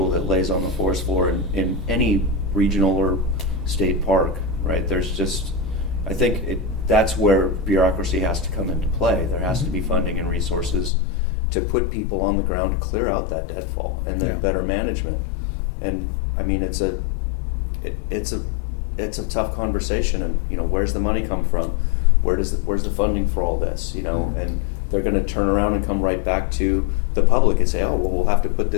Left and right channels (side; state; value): right; drops out; at 10.9 s